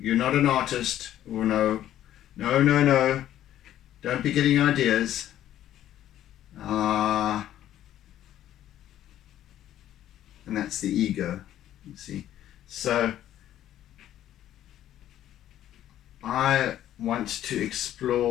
not an artist. Oh no, don't be getting ideas. And that's the ego, you see. So I want to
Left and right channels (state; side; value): quieter; right; 12.1 dB